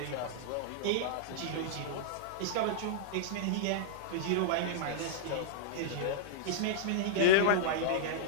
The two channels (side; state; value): both; different; correlation -0.02